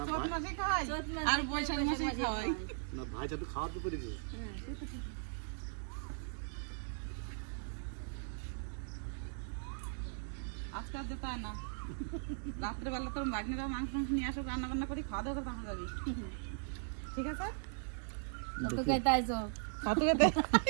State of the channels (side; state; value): left; silent; digital silence